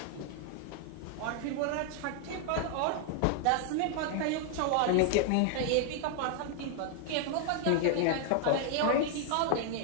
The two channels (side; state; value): both; different; correlation 0.00